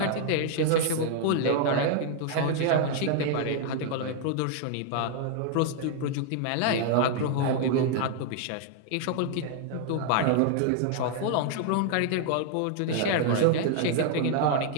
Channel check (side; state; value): both; different; correlation 0.00